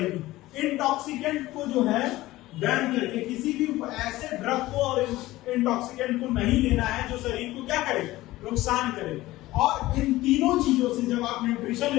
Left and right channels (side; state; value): right; quieter; 17.4 dB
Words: इंटॉक्सिकेंट को जो है बैन करके, किसी भी ऐसे ड्रग को और इंटॉक्सिकेंट को नहीं लेना है जो शरीर को क्या करे, नुकसान करे। और इन तीनों चीजों से जब आप न्यूट्रिशन